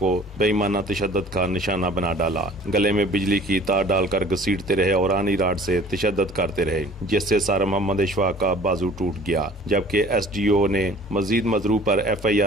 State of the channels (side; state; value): both; normal; correlation 0.49